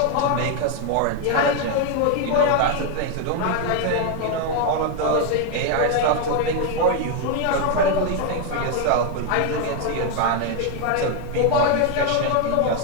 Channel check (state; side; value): different; both; correlation 0.01